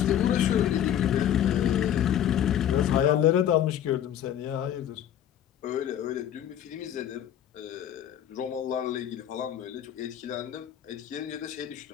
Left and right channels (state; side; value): quieter; right; 10.3 dB